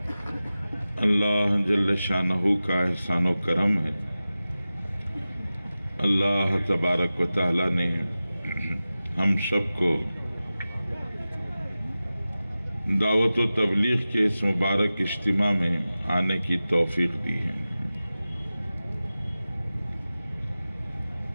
اللہ جل شانہ کا احسان و کرم ہے. اللہ تبارک و تعالی نے ہم سب کو دعوت و تبلیغ کے اس مبارک اجتماع میں آنے کی توفیق دی ہے.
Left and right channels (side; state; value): both; inverted; correlation -0.95